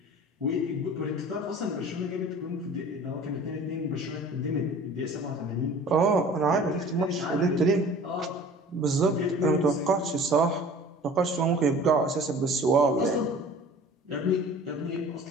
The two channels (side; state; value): both; normal; correlation 0.44